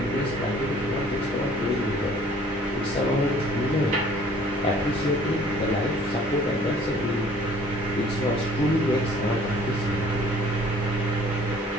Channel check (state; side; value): normal; both; correlation 0.54